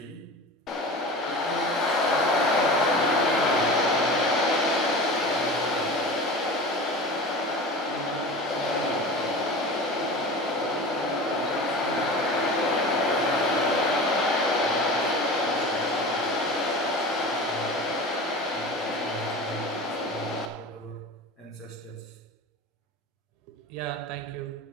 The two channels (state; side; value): normal; both; correlation 0.34